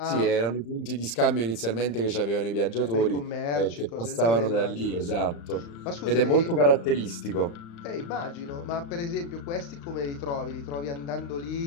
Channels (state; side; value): late; right; 35 ms